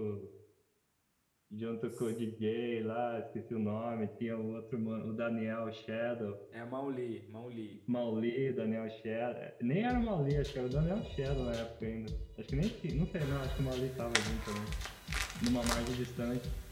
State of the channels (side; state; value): both; identical; correlation 1.00